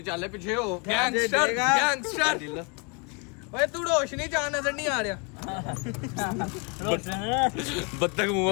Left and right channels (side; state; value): right; quieter; 32.6 dB